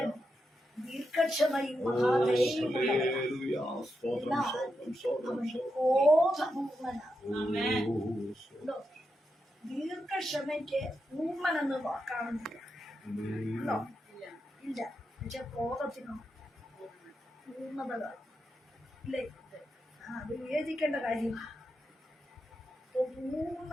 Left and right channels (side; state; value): both; normal; correlation 0.86